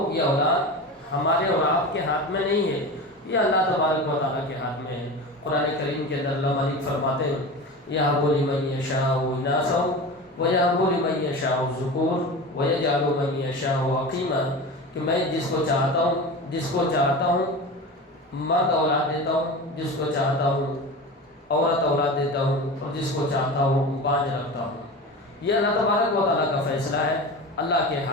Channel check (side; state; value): both; normal; correlation 0.29